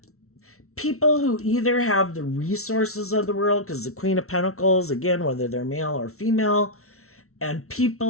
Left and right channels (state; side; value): late; right; 0.63 ms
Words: people who either have the resources of the world, because the Queen of Pentacles, again, whether they're male or female, and